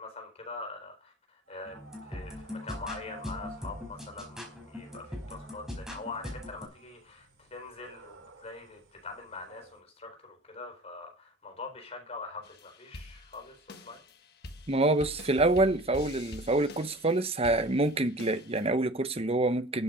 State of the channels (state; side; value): normal; both; correlation 0.42